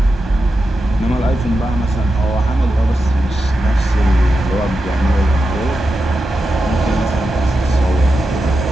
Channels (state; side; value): normal; both; correlation 0.89